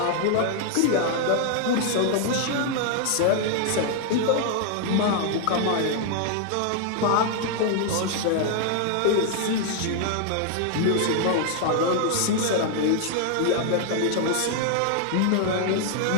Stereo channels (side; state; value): both; different; correlation 0.00